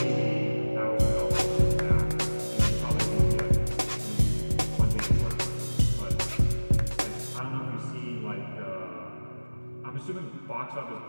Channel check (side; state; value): both; inverted; correlation -1.00